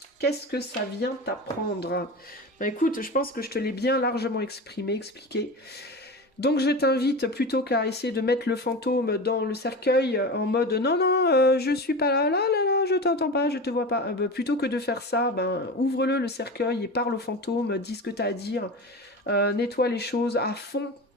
Qu'est-ce que ça vient t'apprendre? Ben écoute, je pense que je te l'ai bien largement expliqué. Donc je t'invite, plutôt qu'à essayer de mettre le fantôme dans le cercueil en mode non, je suis pas là, je t'entends pas, je te vois pas. Plutôt que de faire ça, ouvre-le le cercueil et parle au fantôme, dis ce que tu as à dire, nettoie les choses à fond.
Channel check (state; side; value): normal; both; correlation 0.28